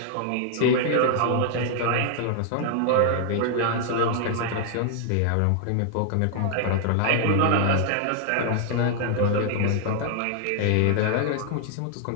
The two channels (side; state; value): both; different; correlation 0.00